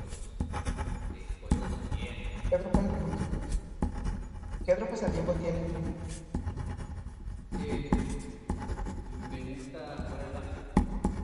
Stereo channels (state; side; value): identical; both; correlation 1.00